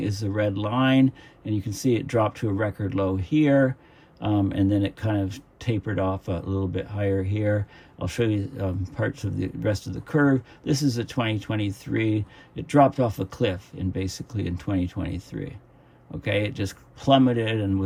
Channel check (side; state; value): both; identical; correlation 1.00